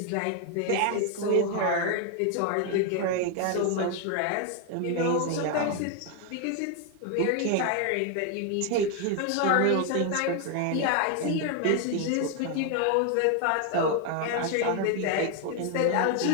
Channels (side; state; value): both; different; correlation 0.01